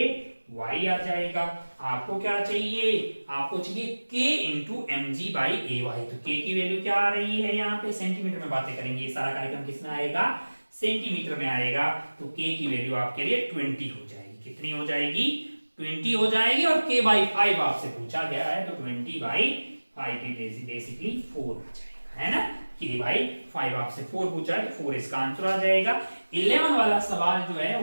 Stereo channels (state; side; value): inverted; both; correlation -1.00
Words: आ जाएगा। आपको क्या चाहिए, आपको चाहिए k into M G by A Y. तो k की वैल्यू क्या आ रही है, यहाँ पे सेंटीमीटर में बातें करेंगे, ये सारा कार्यक्रम किसमें आएगा, सेंटीमीटर में आएगा। तो k की वैल्यू आपके लिए 20 हो जाएगी। कितनी हो जाएगी, 20 हो जाएगी। और k बाई 5 आपसे पूछा गया है, तो 20 बाई 5 बेसिकली 4 आ जाएगा, है ना। k बाई 5 आपसे 4 पूछा है, तो 4 इसका आंसर आ जाएगा। 11 वाला सवाल जो है